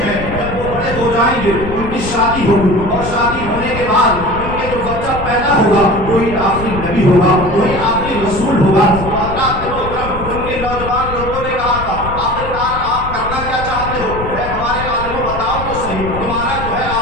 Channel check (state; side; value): noise; left; rumble, 9 dB below the sound